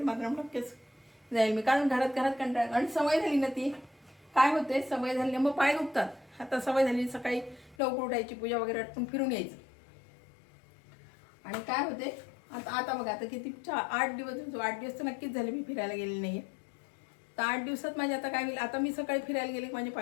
मात्र नक्कीच जाईल मी, कारण घरात कंटाळा आणि सवय झाली ना ती. काय होते, सवय झाली मग पाय दुखतात. आता सवय झाली सकाळी लवकर उठायची, पूजा वगैरे आटपून फिरून यायचं. आणि काय होते आता बघा, आता किती 8 दिवस तर नक्कीच झाले मी फिरायला गेलेली नाहीये. तर 8 दिवसात माझे आता काय होईल, आता मी सकाळी फिरायला गेले की माझे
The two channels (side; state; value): right; drops out; at 7.8 s